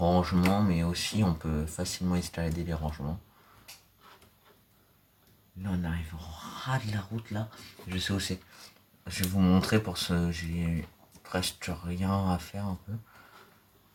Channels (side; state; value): both; identical; correlation 1.00